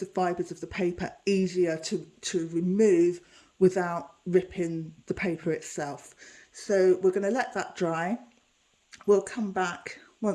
fibres of the paper easier to remove without ripping the paper itself. So we're going to let that dry. We'll come back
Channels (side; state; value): both; identical; correlation 1.00